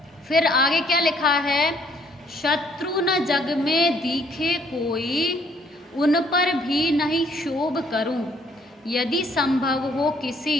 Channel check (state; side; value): normal; both; correlation 0.64